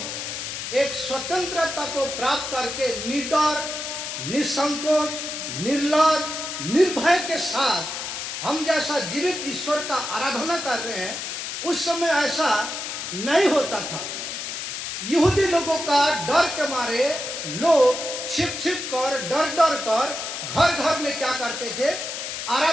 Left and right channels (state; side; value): noise; left; hiss, 5 dB below the sound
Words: एक स्वतंत्रता को प्राप्त करके निडर, निसंकोच, निर्लज, निर्भय के साथ हम जैसा जीवित ईश्वर का आराधना कर रहे हैं, उस समय ऐसा नहीं होता था। यहूदी लोगों का डर के मारे लोग छिप छिप कर, डर डर कर घर घर में क्या करते थे,